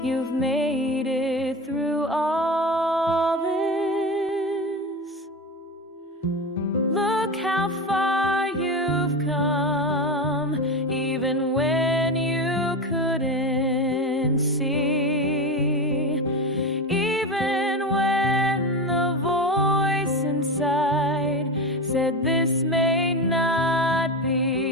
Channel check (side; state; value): both; normal; correlation 0.22